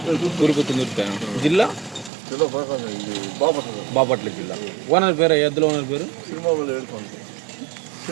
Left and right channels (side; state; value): left; drops out; at 2.1 s